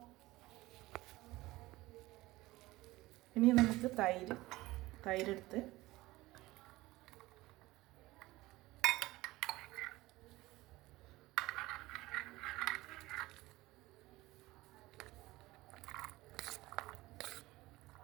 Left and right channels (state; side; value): quieter; left; 18.9 dB